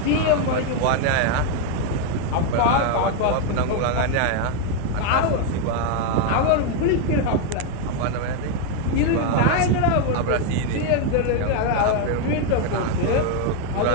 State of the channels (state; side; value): different; both; correlation 0.01